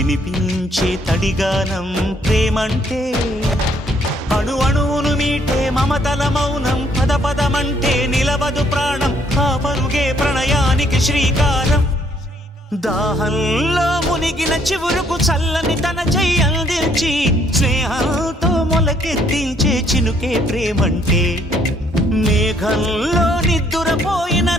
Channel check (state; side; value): normal; both; correlation 0.67